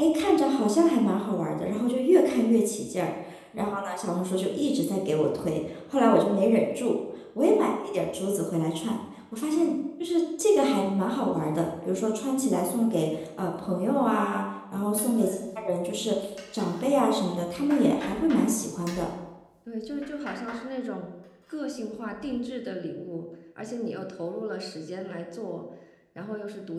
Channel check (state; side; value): identical; both; correlation 1.00